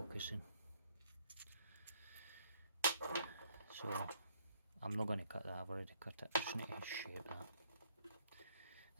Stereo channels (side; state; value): both; inverted; correlation -0.64